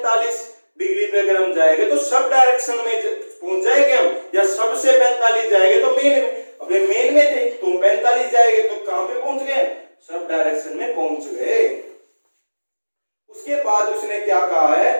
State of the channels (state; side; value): inverted; both; correlation -1.00